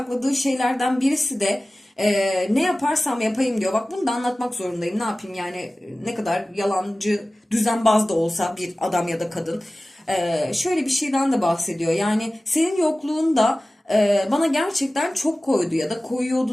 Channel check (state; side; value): normal; both; correlation 0.97